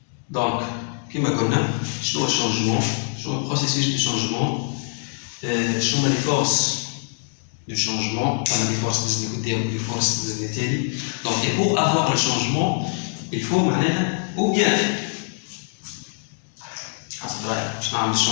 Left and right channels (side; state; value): right; silent; 56 dB below the other